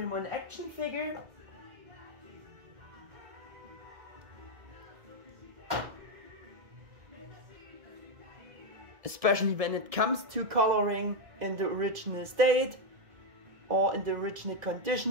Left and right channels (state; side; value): late; left; 1.7 ms